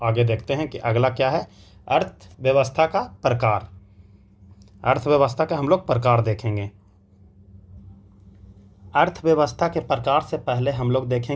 आगे देखते हैं कि अगला क्या है, अर्थव्यवस्था का प्रकार। अर्थव्यवस्था का हम लोग प्रकार देखेंगे। अर्थव्यवस्था के प्रकार से पहले हम लोग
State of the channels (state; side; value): identical; both; correlation 1.00